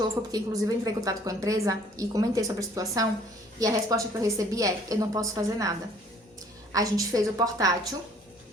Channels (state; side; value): normal; both; correlation 0.57